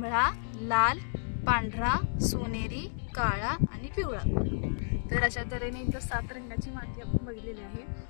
लाल, पांढरा, सोनेरी, काळा आणि पिवळा. तर अशा तऱ्हेने इथं 7 रंगाची माती आपण बघितलेली आहे.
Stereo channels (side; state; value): right; silent; digital silence